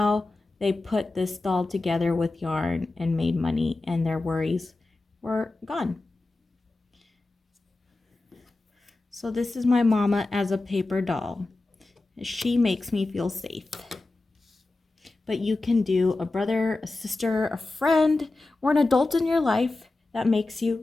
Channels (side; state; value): right; quieter; 3.1 dB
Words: they put this doll together with yarn and made money and their worries were gone. So this is my mama as a paper doll. She makes me feel safe. But you can do a brother, a sister, a friend, or an adult in your life that makes